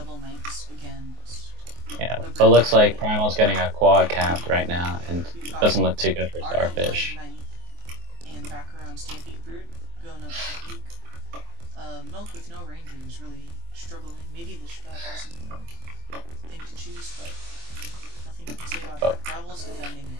knights against... Yeah, but looks like Primal's getting a quad capped right now, and doesn't look too good for Starfish. And back around Stampede Brute, going up to the peak. Milk with no ranger is really struggling. Maybe the strat isn't the thing to choose, but nothing I can say about that. Gravel's defending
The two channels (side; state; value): left; late; 24 ms